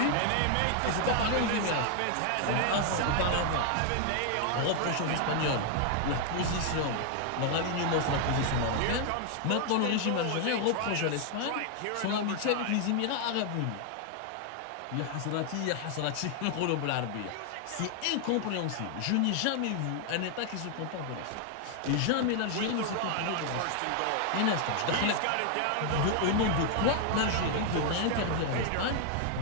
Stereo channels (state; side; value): different; both; correlation 0.00